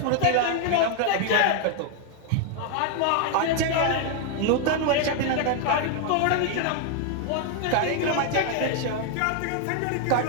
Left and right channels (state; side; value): different; both; correlation 0.00